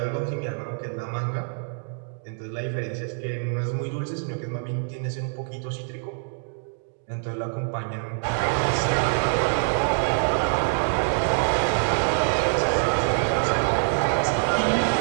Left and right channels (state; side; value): silent; left; digital silence